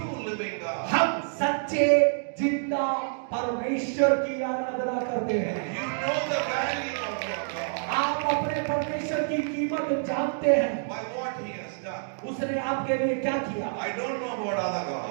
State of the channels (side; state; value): left; silent; digital silence